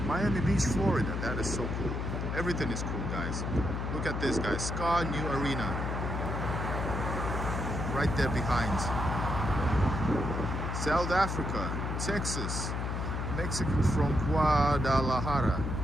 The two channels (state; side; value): noise; left; hum, 2 dB below the sound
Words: Miami Beach, Florida. That is so cool. Everything is cool, guys. Look at this, guys. Ska New Arena. Right there behind. South Africa, Texas, Mexico from Guadalajara.